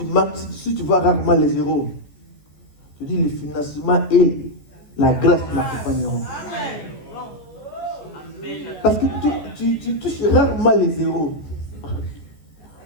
Si tu vois rarement les zéros, tu dis le financement et la grâce m'accompagneront. Parce que tu touches rarement les zéros.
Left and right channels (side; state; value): right; late; 14 ms